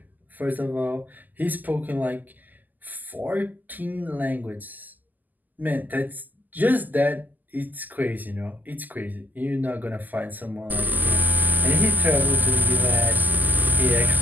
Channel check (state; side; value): late; left; 0.084 ms